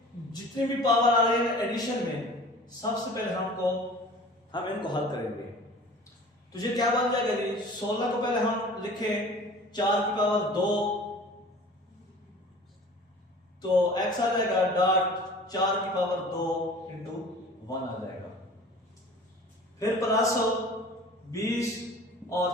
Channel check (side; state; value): both; normal; correlation 0.44